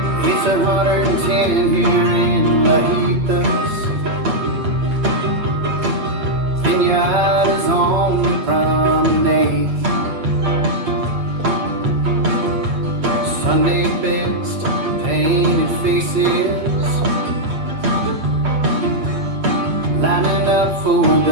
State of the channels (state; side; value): late; left; 8.0 ms